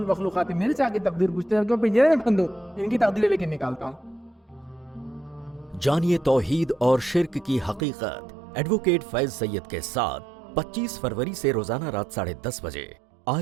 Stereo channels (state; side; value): drops out; left; at 7.8 s